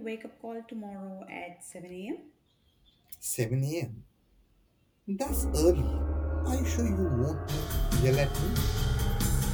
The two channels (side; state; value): both; identical; correlation 1.00